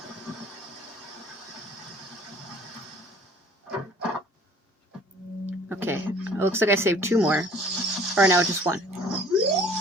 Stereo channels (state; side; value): normal; both; correlation 0.52